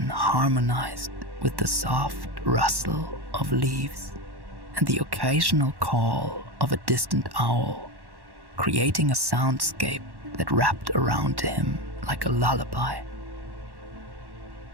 harmonized with the soft rustle of leaves and the occasional call of a distant owl, creating a soundscape that wrapped around him like a lullaby.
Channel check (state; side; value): late; left; 1.1 ms